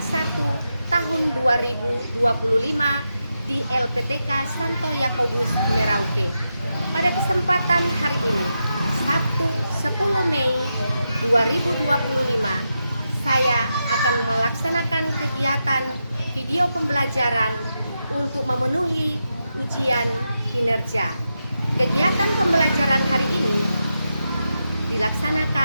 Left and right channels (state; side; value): inverted; both; correlation -0.87